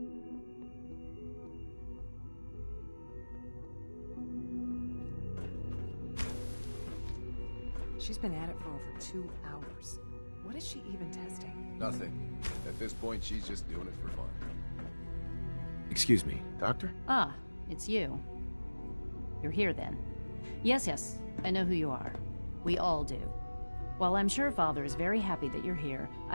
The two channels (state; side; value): inverted; both; correlation -1.00